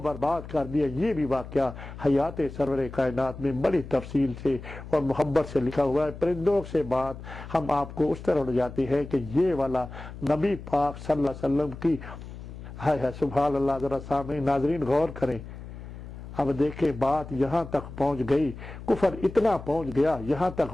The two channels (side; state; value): left; noise; hum, 12 dB below the sound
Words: کر دیا۔ یہ بھی واقعہ حیات سرور کائنات میں بڑی تفصیل سے اور محبت سے لکھا ہوا ہے۔ پرندوں سے بات ہم آپ کو اس طرح اڑ جاتی ہے کہ یہ والا نبی پاک صلی اللہ علیہ وسلم کی ہے سبحان اللہ۔ ذرا سامنے ناظرین غور کریں، اب دیکھیں بات یہاں تک پہنچ گئی، کفر اتنا پہنچ گیا، یہاں